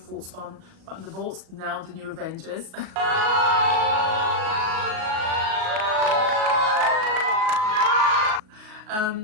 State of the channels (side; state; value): left; late; 38 ms